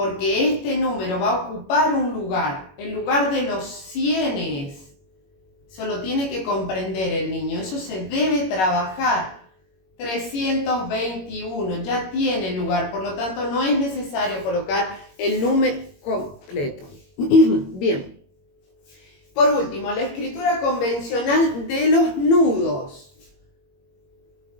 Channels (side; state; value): right; late; 21 ms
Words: este número va a ocupar un lugar, el lugar de los cienes. Eso lo tiene que comprender el niño, eso se debe trabajar. 321 ya tiene lugar, por lo tanto no es necesario colocar el número completo. Bien. Por último, la escritura convencional de los nudos.